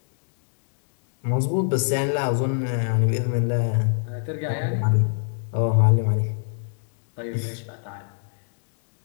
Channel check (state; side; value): silent; right; digital silence